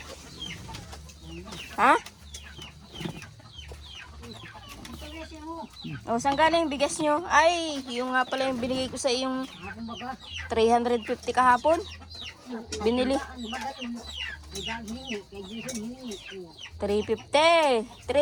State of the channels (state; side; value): identical; both; correlation 1.00